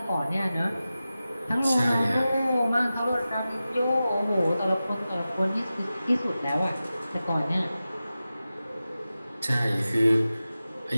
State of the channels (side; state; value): both; inverted; correlation -0.94